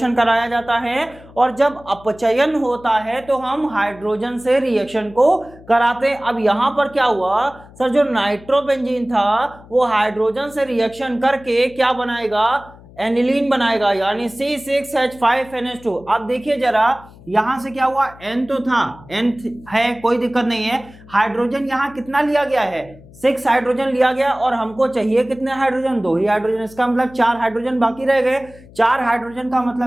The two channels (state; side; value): noise; left; hum, 22 dB below the sound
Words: कराया जाता है, और जब अपचयन होता है तो हम हाइड्रोजन से रिएक्शन को कराते हैं। अब यहां पर क्या हुआ सर? जो नाइट्रोबेंजीन था वो हाइड्रोजन से रिएक्शन करके क्या बनाएगा? एनिलीन बनाएगा, यानी C6H5NH2। अब देखिए जरा यहां से क्या हुआ? N तो था, N है, कोई दिक्कत नहीं है। हाइड्रोजन यहां कितना लिया गया है? 6 हाइड्रोजन लिया गया, और हमको चाहिए कितने हाइड्रोजन? 2 ही हाइड्रोजन। इसका मतलब 4 हाइड्रोजन बाकी रह गए। 4 हाइड्रोजन का